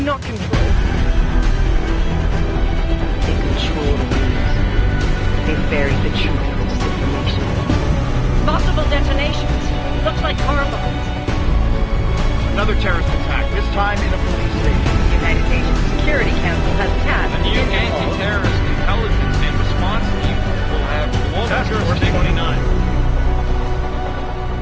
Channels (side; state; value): both; identical; correlation 1.00